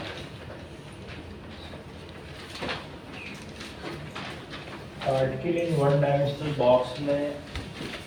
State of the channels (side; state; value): both; identical; correlation 1.00